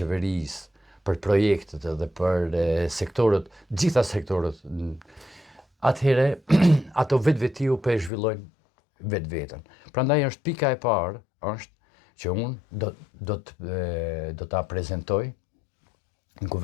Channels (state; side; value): drops out; right; at 8.1 s